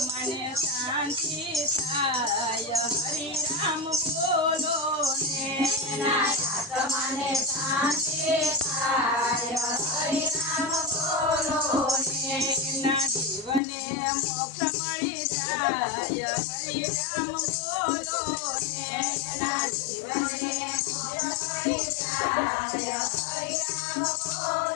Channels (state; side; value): drops out; right; at 13.6 s